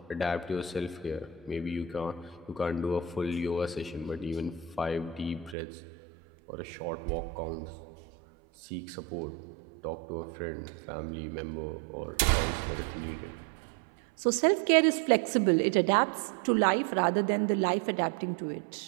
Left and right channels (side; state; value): left; drops out; at 5.6 s